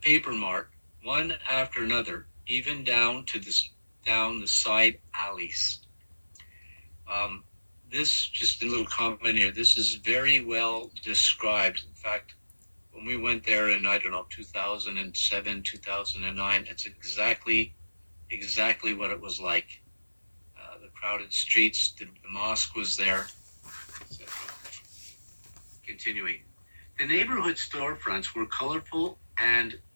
Paper Mart, one after another, even down the side alleys. This, just a little comment here, this is very well described. In fact, when we went there in, I don't know, 2007, 2009, it's exactly what it was like. The crowded streets, the mosque was there. Continuing. The neighborhood storefronts were colorful and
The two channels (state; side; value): inverted; both; correlation -1.00